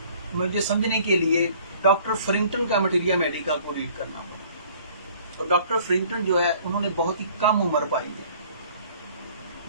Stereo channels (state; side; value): inverted; both; correlation -0.54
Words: مجھے سمجھنے کے لیے ڈاکٹر فرنگٹن کا مٹیریا میڈیکا کو ریڈ کرنا ہوگا. ڈاکٹر فرنگٹن جو ہے انہوں نے بہت ہی کم عمر پائی ہے،